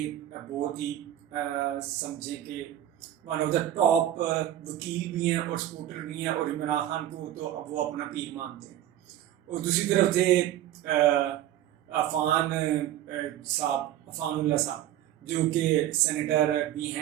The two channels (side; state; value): left; quieter; 12.3 dB